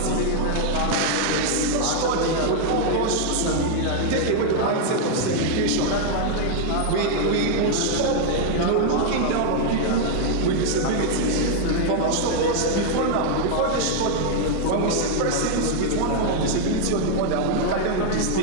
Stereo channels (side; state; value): both; different; correlation -0.01